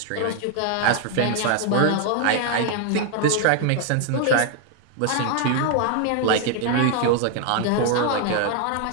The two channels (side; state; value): both; different; correlation 0.00